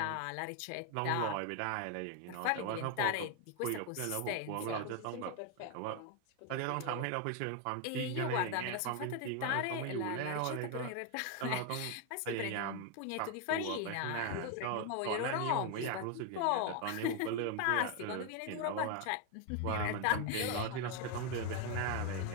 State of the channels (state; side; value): different; both; correlation 0.01